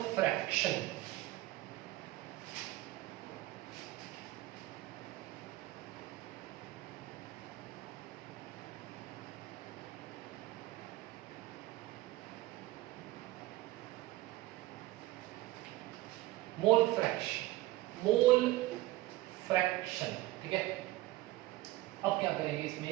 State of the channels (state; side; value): quieter; left; 17.8 dB